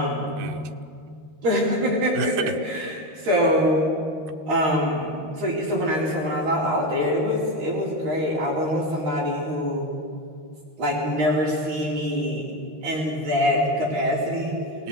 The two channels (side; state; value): left; late; 13 ms